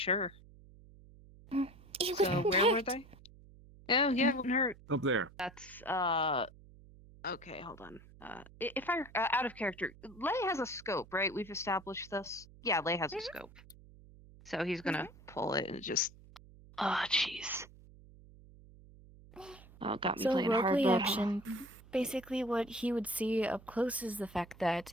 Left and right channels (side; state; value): right; noise; hum, 22 dB below the sound